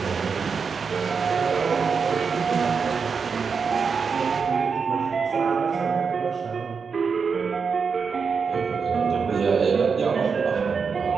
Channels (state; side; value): quieter; left; 5.6 dB